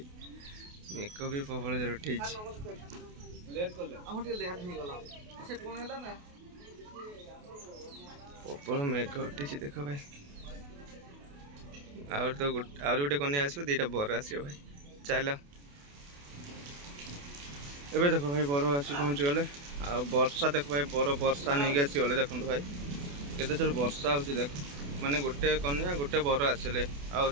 मेघ भी प्रबल जोर उठी प्रबल मेघ उठी देख भाई तो गोटे कन्या आसो 2टा बर आसो भाई। चल एबे देखो भाई बर आसी पहुँची गले आ वर्षा देख भाई बर वर्षा नहीं आसी गले देखो भाई केते जोर वर्षा हो देख माने गोटे कन्या गोटे बर आसिले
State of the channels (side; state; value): left; late; 28 ms